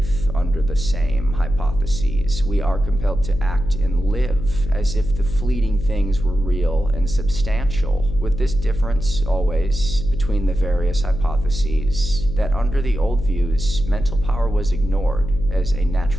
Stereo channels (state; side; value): noise; left; hum, 7 dB below the sound